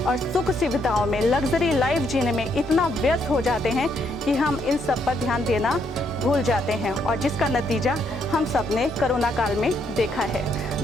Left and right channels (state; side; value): normal; both; correlation 0.74